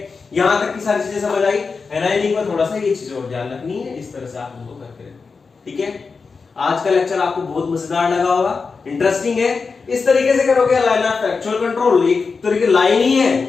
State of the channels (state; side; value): quieter; right; 4.8 dB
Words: यहां तक की सारी चीजें समझ आई। एनायनिक में थोड़ा सा ये चीज और ध्यान रखनी है, इस तरह से आप उनको करके रखें, ठीक है। आज का लेक्चर आपको बहुत मजेदार लगा होगा, इंटरेस्टिंग है। इस तरीके से करोगे लाइन ऑफ एक्चुअल कंट्रोल, एक तरीके लाइन ही है